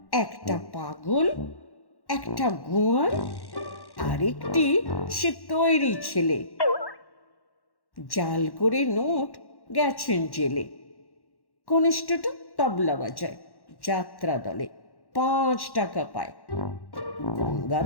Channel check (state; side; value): late; right; 1.1 ms